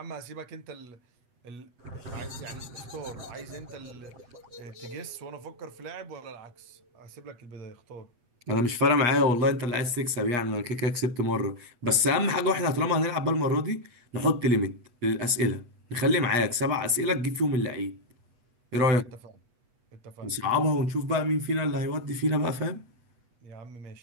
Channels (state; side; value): late; left; 8.3 ms